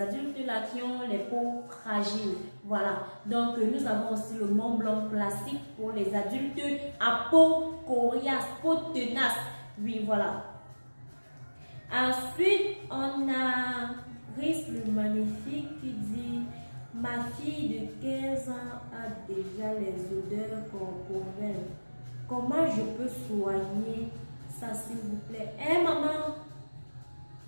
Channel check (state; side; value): inverted; both; correlation -1.00